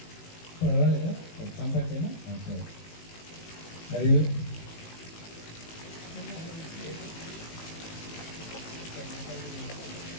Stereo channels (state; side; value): late; right; 18 ms